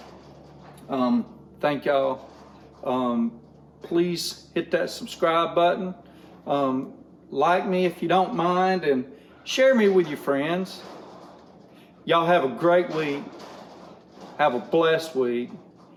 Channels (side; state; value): both; identical; correlation 1.00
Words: Thank y'all. Please hit that subscribe button. Like me if you don't mind, and share me with your friends. Y'all have a great week. Have a blessed week.